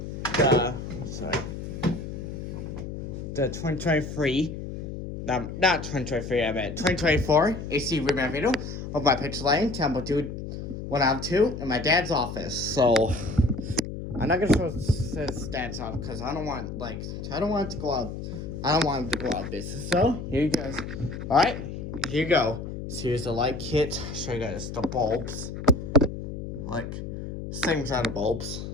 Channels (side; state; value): left; noise; hum, 7 dB below the sound